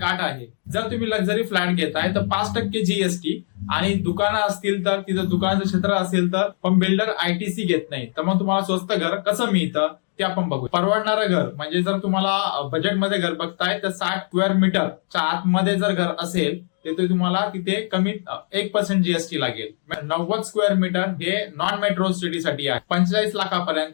अट आहे. जर तुम्ही लक्झरी फ्लॅट घेताय तर 5% जीएसटी, आणि दुकानं असतील तर तिथं दुकानाचं क्षेत्र असेल तर पण बिल्डर आयटीसी घेत नाही. तर मग तुम्हाला स्वस्त घर कसं मिळतं ते आपण बघू. परवडणारं घर म्हणजे जर तुम्हाला बजेटमध्ये घर बघताय तर 60 स्क्वेअर मीटरच्या आतमध्ये जर घर असेल तर तुम्हाला तिथे कमीत 1% जीएसटी लागेल. 90 स्क्वेअर मीटर हे नॉन मेट्रो सिटीसाठी आहे. 45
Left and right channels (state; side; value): silent; right; 64 dB below the other